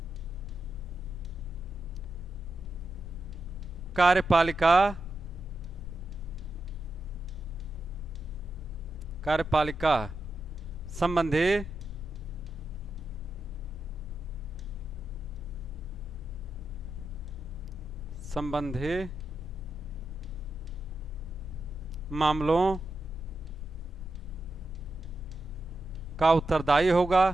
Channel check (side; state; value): both; normal; correlation 0.88